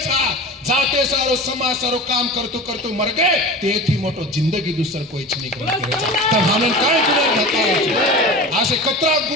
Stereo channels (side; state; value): both; normal; correlation 0.33